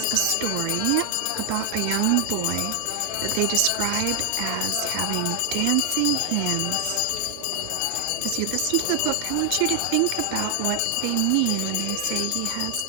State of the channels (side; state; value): both; different; correlation 0.00